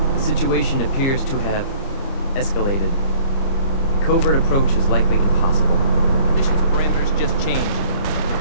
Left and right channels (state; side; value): late; right; 30 ms